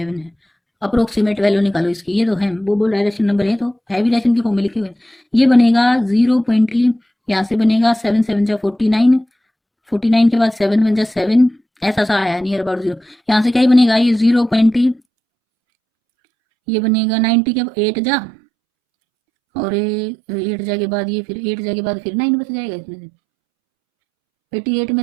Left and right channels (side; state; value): left; drops out; at 15.0 s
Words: है। अप्रोक्सीमेट वैल्यू निकालो इसकी, ये तो है, वो बोल रहा है रैशनल नंबर है तो है भी रैशन की फॉर्म में लिखे हुए। ये बनेगा 0. यहाँ से बनेगा 7 7 जा 49, 49 के बाद 7 1 जा 7, ऐसा सा आया नियर अबाउट 0। यहाँ से क्या ही बनेगा, ये 0. ये बनेगा 90 के 8 जा, और 8 जा के बाद ये, फिर 8 जा के बाद फिर 9 बच जाएगा, इसमें से 88 में